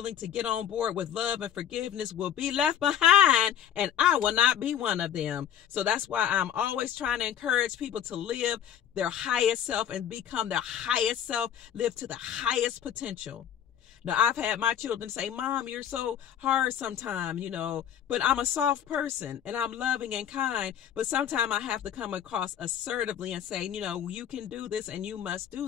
to get on board with love and forgiveness will be left behind, and I will not be one of them. So that's why I'm always trying to encourage people to live their highest self and become their highest self, live to the highest potential. Now, I've had my children say, Mom, you're so hard sometimes, but I'm a soft person and I'm loving and kind. But sometimes I have to come across assertively and say, you can do this and you must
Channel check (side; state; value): right; quieter; 9.6 dB